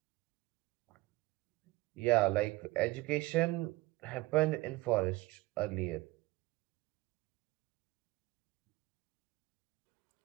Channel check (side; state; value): left; quieter; 20.5 dB